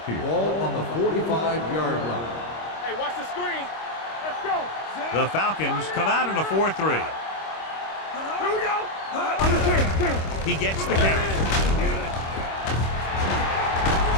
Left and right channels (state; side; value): late; right; 25 ms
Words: here. Ball on the 45-yard line. Hey, watch the screen. Let's go. The Falcons come out in a 4-3. Here we go. Under 10. He gets the carry.